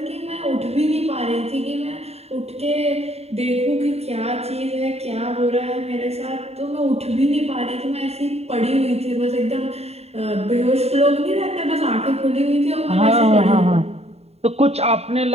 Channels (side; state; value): left; late; 0.30 ms